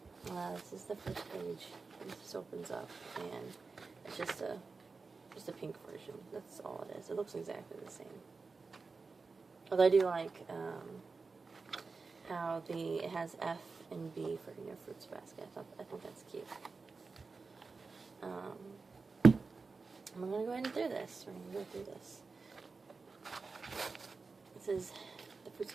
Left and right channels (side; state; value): left; quieter; 4.3 dB